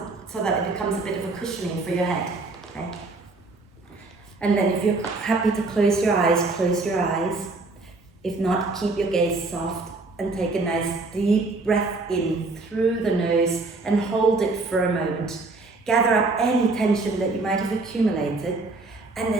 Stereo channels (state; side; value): quieter; left; 3.5 dB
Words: that it becomes a bit of a cushioning for your head. Okay. And then if you're happy to close your eyes, close your eyes. If not, keep your gaze soft and take a nice deep breath in through the nose and hold it for a moment. Gather up any tension that you might have accumulated and